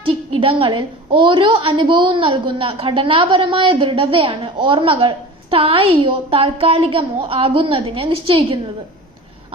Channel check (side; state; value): both; normal; correlation 0.36